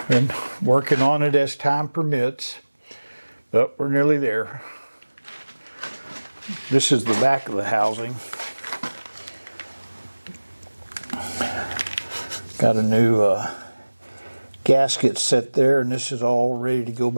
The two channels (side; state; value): both; inverted; correlation -1.00